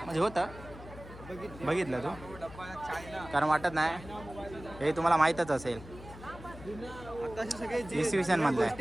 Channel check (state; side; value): noise; left; hum, 15 dB below the sound